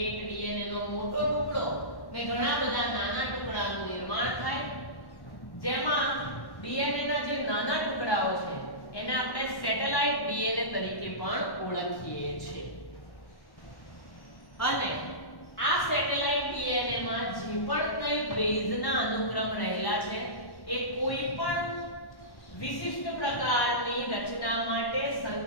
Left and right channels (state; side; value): late; right; 1.1 ms